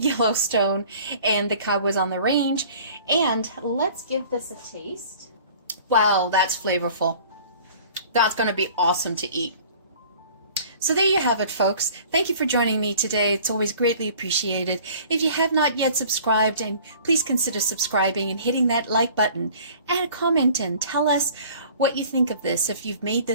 and the Cowboys on the Range. And let's give this a taste. Wow, that's flavorful. That's going to be awesome to eat. So there you have it, folks. Thank you for joining me today. It's always greatly appreciated. If you have not yet subscribed, and please consider subscribing and hitting that like button. Add a comment and tell us what you think of this, if you've made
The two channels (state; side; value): inverted; both; correlation -0.48